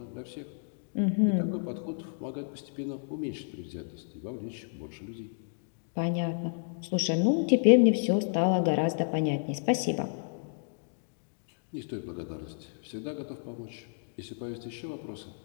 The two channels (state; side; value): silent; right; digital silence